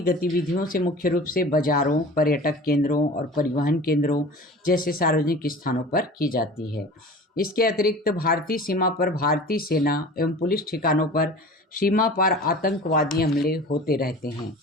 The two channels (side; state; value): both; normal; correlation 0.39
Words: गतिविधियों से मुख्य रूप से बाजारों, पर्यटक केंद्रों और परिवहन केंद्रों जैसे सार्वजनिक स्थानों पर की जाती है। इसके अतिरिक्त भारतीय सीमा पर भारतीय सेना एवं पुलिस ठिकानों पर सीमा पार आतंकवादी हमले होते रहते हैं।